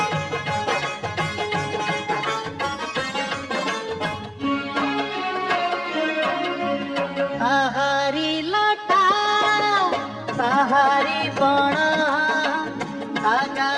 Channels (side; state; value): both; identical; correlation 1.00